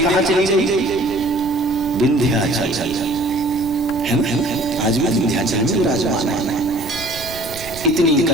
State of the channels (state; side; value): noise; right; rumble, 15 dB below the sound